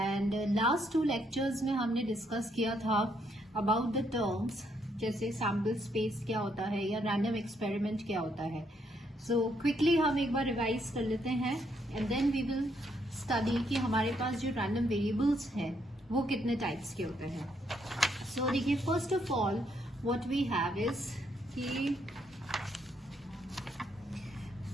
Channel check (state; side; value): normal; both; correlation 0.73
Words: last two lectures में हमने discuss किया था about the terms जैसे sample space क्या होता है या random experiment क्या होता है. So quickly हम एक बार revise कर लेते हैं and then we will study कि हमारे पास जो random variables हैं वो कितने types के होते हैं. So देखिए first of all what we have is कि